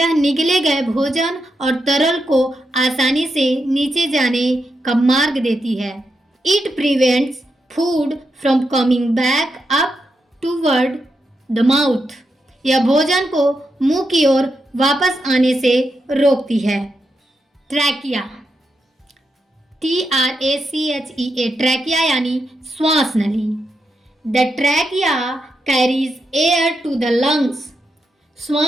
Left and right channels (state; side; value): normal; both; correlation 0.85